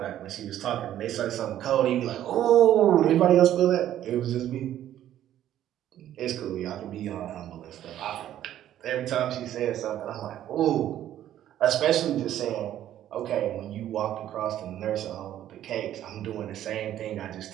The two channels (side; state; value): left; quieter; 11.9 dB